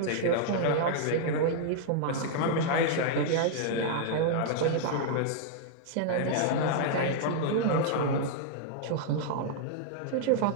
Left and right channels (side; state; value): both; different; correlation -0.01